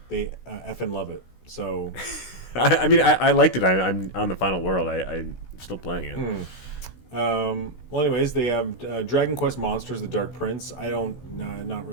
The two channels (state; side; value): late; right; 16 ms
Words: effing love it. So, I mean, I liked it. I'm on the final world. I'm still playing it. Well, anyways, they have Dragon Quest Monsters: The Dark Prince. Not